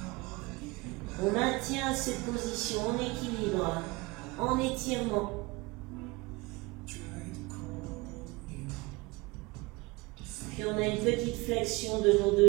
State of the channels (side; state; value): left; quieter; 24.0 dB